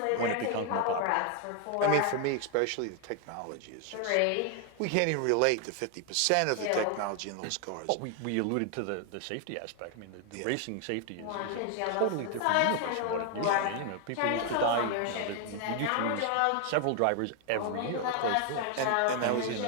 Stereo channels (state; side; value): different; both; correlation 0.00